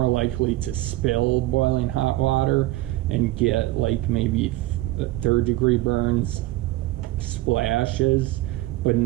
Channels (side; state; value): left; quieter; 17.4 dB